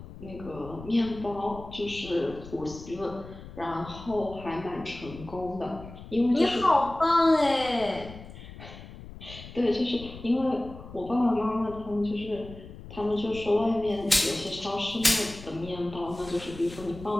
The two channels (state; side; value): noise; left; rumble, 15 dB below the sound